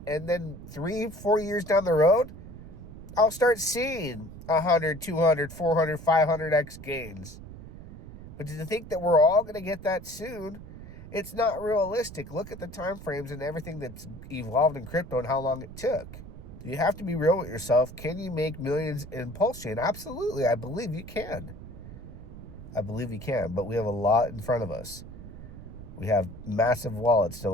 then 3-4 years down the road, I'll start seeing 100, 200, 400, 500x gains. But to think that we're all going to get that soon, it's not realistic. Look at the time frames and everything that's evolved in crypto and how long it took. You have to be real with yourself. Can you make millions in Pulsechain? Absolutely. I believe you can. I believe you can, but we have a lot in front of us. We have massive wallets to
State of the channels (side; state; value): right; noise; rumble, 14 dB below the sound